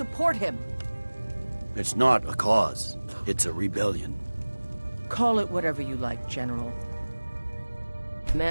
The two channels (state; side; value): inverted; both; correlation -1.00